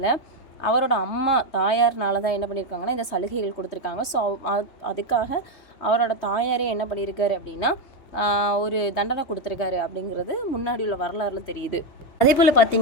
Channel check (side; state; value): right; late; 3.2 ms